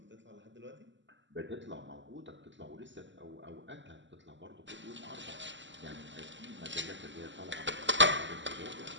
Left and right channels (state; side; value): late; left; 0.54 ms